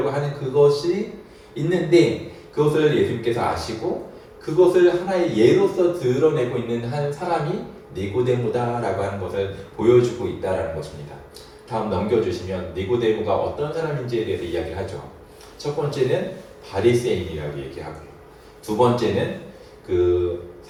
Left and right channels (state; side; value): identical; both; correlation 1.00